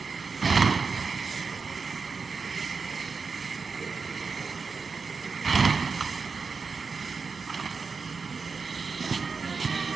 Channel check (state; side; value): quieter; left; 5.0 dB